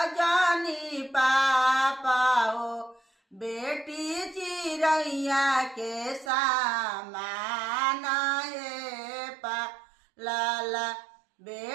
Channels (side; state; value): left; drops out; at 6.3 s